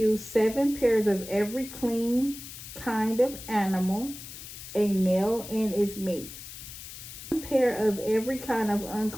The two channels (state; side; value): noise; left; hiss, 13 dB below the sound